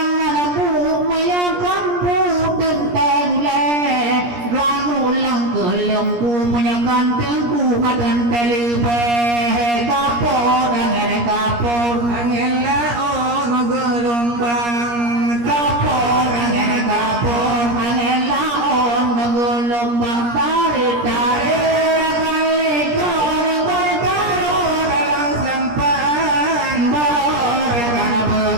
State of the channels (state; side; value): late; left; 17 ms